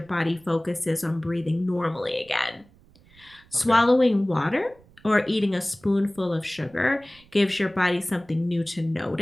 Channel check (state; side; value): noise; right; rumble, 28 dB below the sound